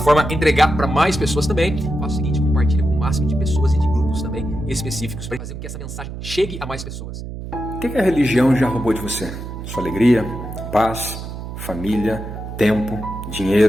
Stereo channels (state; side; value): noise; right; hum, 9 dB below the sound